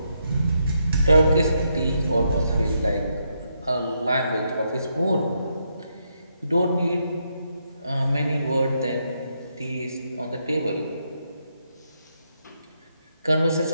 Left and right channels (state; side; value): inverted; both; correlation -0.79